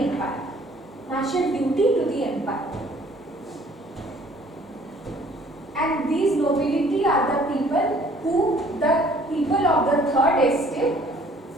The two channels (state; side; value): normal; both; correlation 0.57